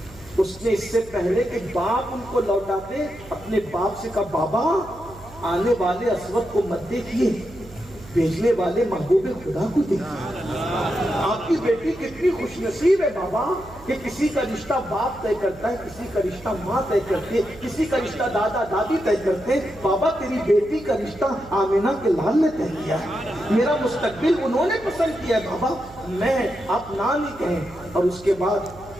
اس نے اس سے پہلے کہ باپ ان کو لوٹاتے اپنے باپ سے کہا بابا آنے والے اسود کو مت دیکھیے، بھیجنے والے محبوب خدا کو دیکھیے۔ آپ کی بیٹی کتنی خوش نصیب ہے بابا کہ کسی کا رشتہ باپ طے کرتا ہے، کسی کا رشتہ ماں طے کرتی ہے، کسی کا رشتہ دادا دادی طے کرتے ہیں۔ بابا تیری بیٹی کا رشتہ آمینہ کے لال نے طے کیا ہے، میرا مستقبل انہوں نے پسند کیا ہے بابا، میں آپ نہ نہیں کہیں۔ اور اس کے بعد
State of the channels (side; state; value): right; noise; hum, 20 dB below the sound